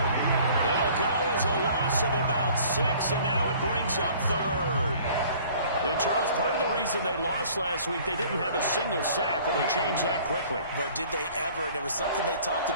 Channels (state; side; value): inverted; both; correlation -0.52